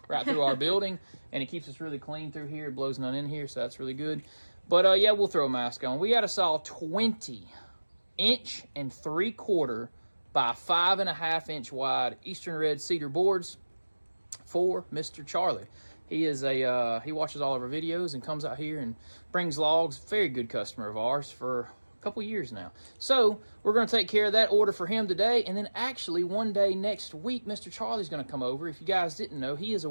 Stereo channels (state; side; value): inverted; both; correlation -1.00